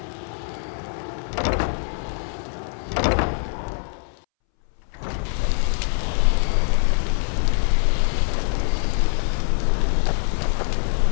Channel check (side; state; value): right; silent; 63 dB below the other